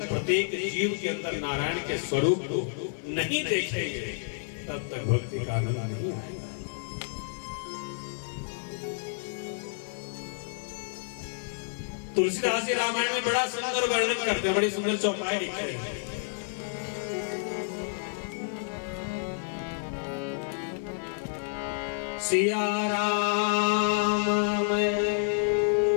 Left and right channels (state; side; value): silent; right; digital silence